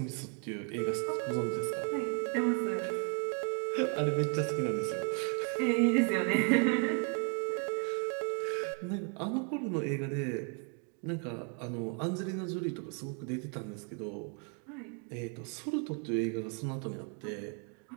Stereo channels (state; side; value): quieter; left; 38.6 dB